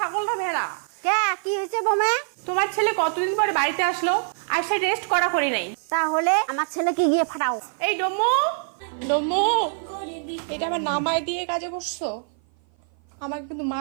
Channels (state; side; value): silent; left; 56 dB below the other